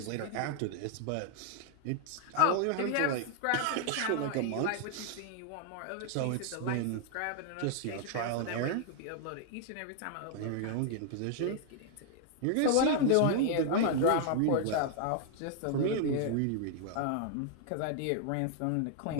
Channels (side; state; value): both; different; correlation 0.00